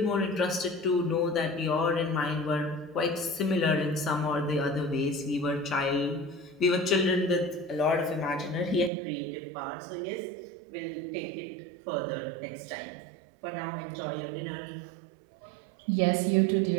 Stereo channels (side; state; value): left; drops out; at 8.9 s